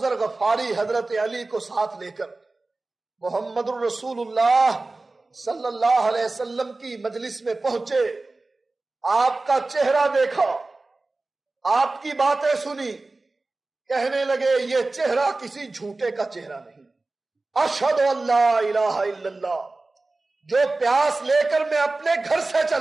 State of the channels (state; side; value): quieter; left; 3.3 dB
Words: غفاری حضرت علی کو ساتھ لے کر محمد الرسول اللہ صلی اللہ علیہ وسلم کی مجلس میں پہنچے، آپ کا چہرہ دیکھا، آپ کی باتیں سنی، کہنے لگے یہ چہرہ کسی جھوٹے کا چہرہ نہیں۔ اشہد ان لا الہ الا اللہ، جو پیاس لے کر میں اپنے گھر سے